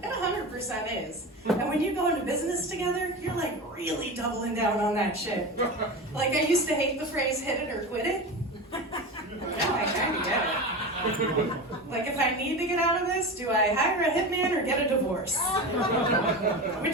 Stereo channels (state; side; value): normal; both; correlation 0.26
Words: It 100% is. And when you go into business together, you're like really doubling down on that shit. Like, I used to hate the phrase hit it or quit it. Now I kind of get it. Like, if I need to get out of this, do I hire a hitman or get a divorce?